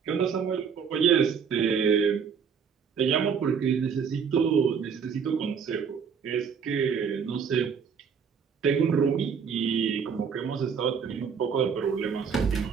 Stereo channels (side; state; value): left; quieter; 6.6 dB